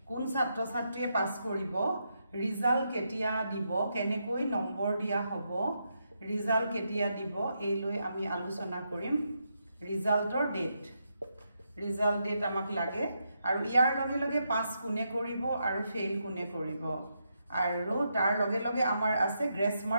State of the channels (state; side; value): inverted; both; correlation -0.82